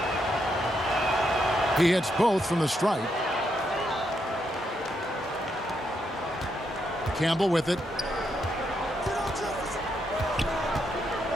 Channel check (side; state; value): both; normal; correlation 0.79